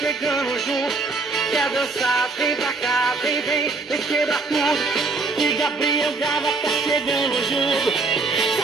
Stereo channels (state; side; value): quieter; left; 3.9 dB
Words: chegando junto. Quer dançar, vem pra cá, vem quebra tudo. Que Gabriel Gava tá chegando junto. Se a